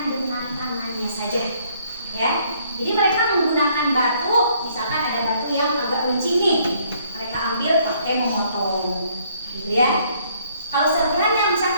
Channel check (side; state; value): both; inverted; correlation -0.65